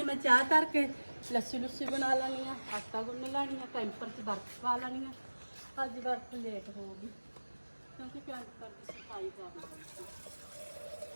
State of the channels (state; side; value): inverted; both; correlation -1.00